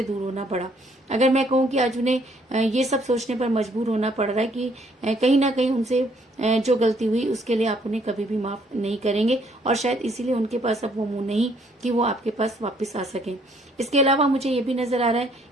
दूर होना पड़ा। अगर मैं कहूँ कि आज उन्हें ये सब सोचने पर मजबूर होना पड़ रहा है कि कहीं ना कहीं उनसे जो गलती हुई उसके लिए आप उन्हें कभी भी माफ नहीं करेंगे और शायद इसीलिए उनके पास अब वो मुंह नहीं कि वो आपके पास वापस आ सकें। इसके अलावा मुझे ये भी नजर आ रहा है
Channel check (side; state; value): both; normal; correlation 0.65